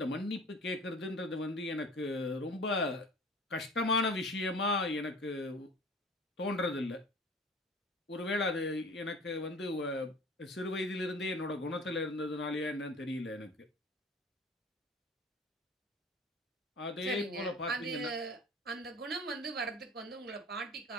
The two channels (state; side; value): normal; both; correlation 0.43